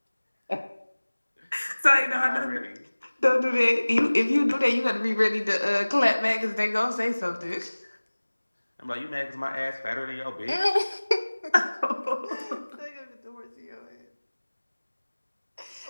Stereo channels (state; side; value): inverted; both; correlation -1.00